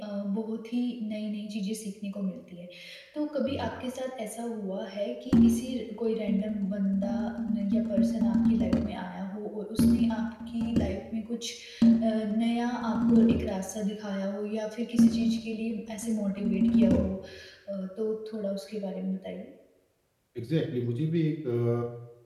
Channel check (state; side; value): identical; both; correlation 1.00